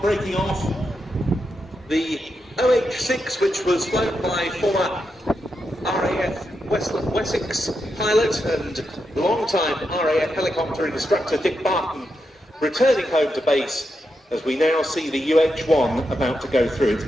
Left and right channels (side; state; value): both; normal; correlation 0.85